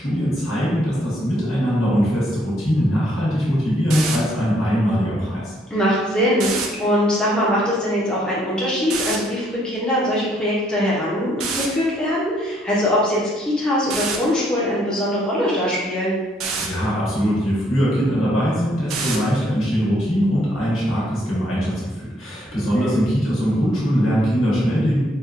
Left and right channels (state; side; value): normal; both; correlation 0.69